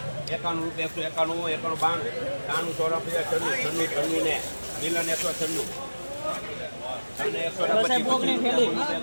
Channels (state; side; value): inverted; both; correlation -1.00